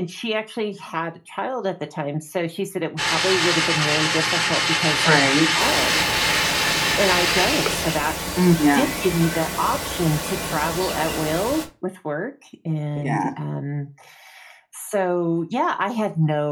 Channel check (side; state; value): both; identical; correlation 1.00